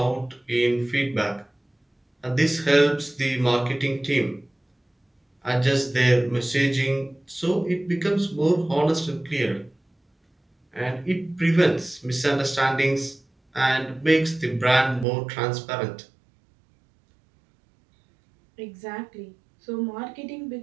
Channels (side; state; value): left; drops out; at 15.1 s